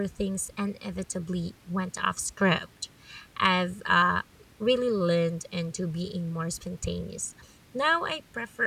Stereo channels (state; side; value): identical; both; correlation 1.00